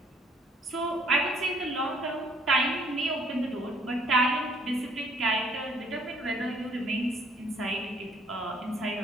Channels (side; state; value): both; normal; correlation 0.62